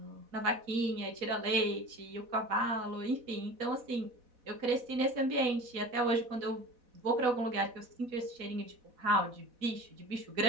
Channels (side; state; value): left; late; 4.1 ms